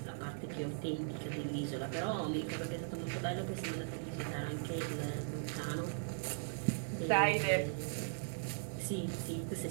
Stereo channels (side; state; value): left; silent; digital silence